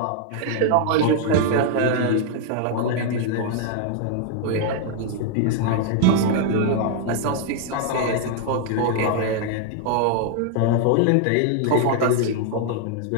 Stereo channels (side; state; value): both; different; correlation 0.00